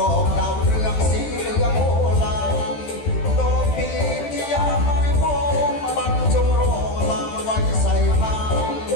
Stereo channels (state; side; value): late; right; 13 ms